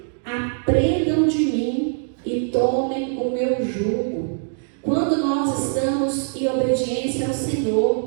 aprendam de mim, obediência ao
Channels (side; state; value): left; silent; 64 dB below the other